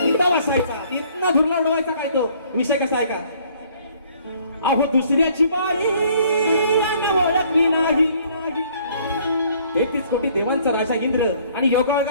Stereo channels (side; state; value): both; inverted; correlation -0.60